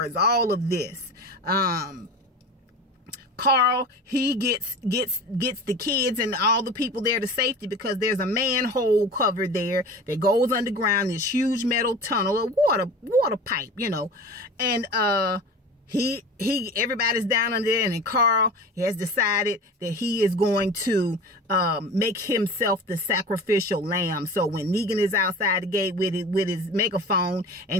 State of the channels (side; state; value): both; normal; correlation 0.35